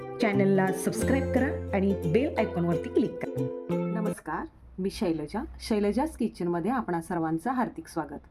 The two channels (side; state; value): both; identical; correlation 1.00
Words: चॅनलला सबस्क्राईब करा आणि बेल आयकॉनवरती क्लिक करा। नमस्कार, मी शैलजाज किचनमध्ये आपणा सर्वांचं हार्दिक स्वागत।